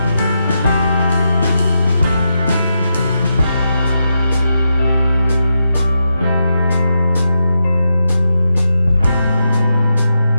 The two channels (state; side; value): inverted; both; correlation -0.86